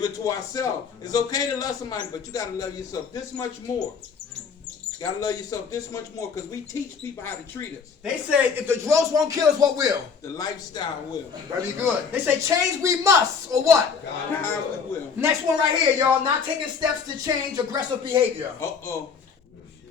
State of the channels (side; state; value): right; quieter; 5.9 dB